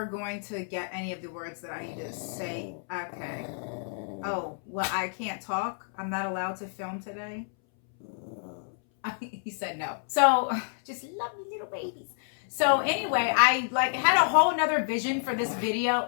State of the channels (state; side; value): silent; right; 58 dB below the other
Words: going to get any of the words that I need to say. Okay. Oh, well, I can't talk. I'm not allowed to film today. He said no. So just love me little babies. So anyway, I like had a whole nother vision for this video.